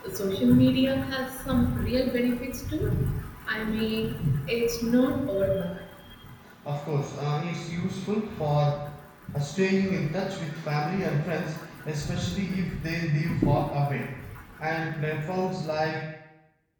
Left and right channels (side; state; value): both; identical; correlation 1.00